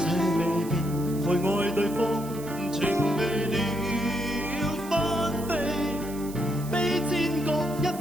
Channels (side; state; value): right; noise; hiss, 16 dB below the sound